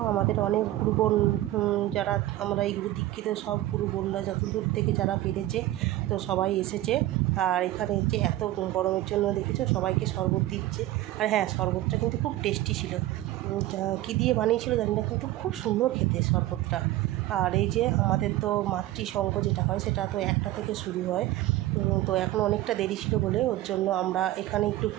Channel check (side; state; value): left; quieter; 15.5 dB